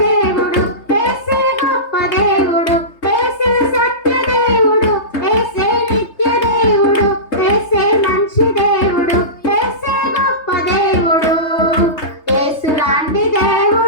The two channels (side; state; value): right; late; 3.3 ms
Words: దేవుడు, యేసే గొప్ప దేవుడు, యేసే సత్య దేవుడు, యేసే నిత్య దేవుడు, యేసే మంచి దేవుడు, యేసే గొప్ప దేవుడు, యేసు లాంటి